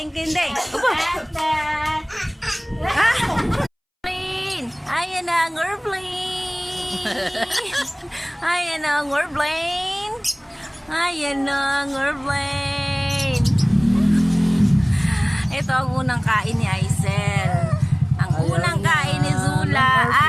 ding ding. Ayan na ang airplane. Ayan na ang airplane. Ayan na ang airplane. Ito ang unang kain ni Aisel. Ang unang kain ni Zula.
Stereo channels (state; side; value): identical; both; correlation 1.00